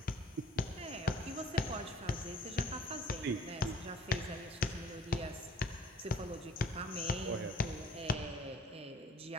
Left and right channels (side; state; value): both; normal; correlation 0.54